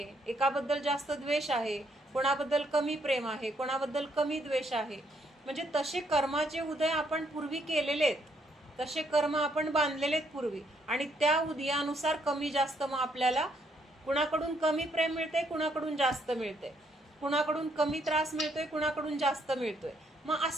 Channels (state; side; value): normal; both; correlation 0.72